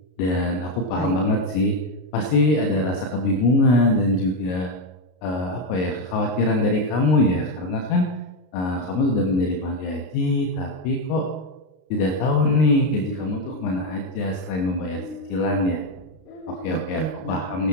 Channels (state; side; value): late; right; 33 ms